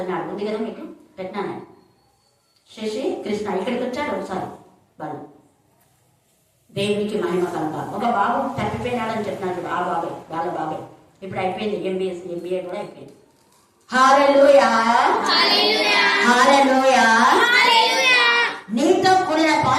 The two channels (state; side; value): identical; both; correlation 1.00